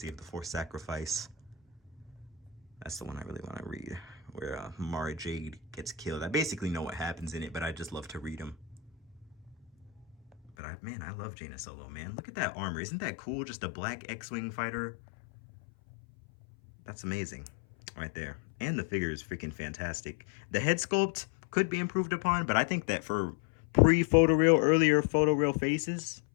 of the Force Sacrifice. That's the one I really want to read, where Mara Jade gets killed. I basically know what happens in it, but I just love to read them. But man, I love Jaina Solo, man. Look at that armor. Isn't that cool? Just a black X-Wing fighter. That's amazing right there. And the figure is freaking fantastic. The head sculpt could be improved upon, but I think that for pre-photoreal, earlier photoreal faces,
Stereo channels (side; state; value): right; drops out; at 10.5 s